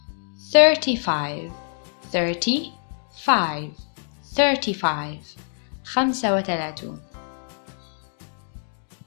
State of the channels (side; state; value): right; silent; digital silence